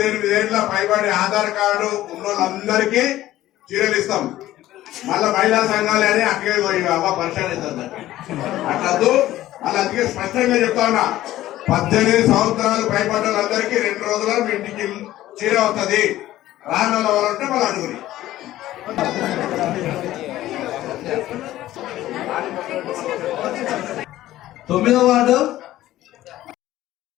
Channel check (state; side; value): quieter; right; 14.7 dB